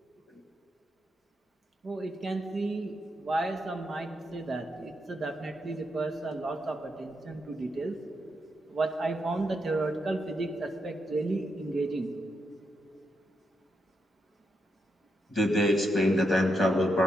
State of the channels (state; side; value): normal; both; correlation 0.82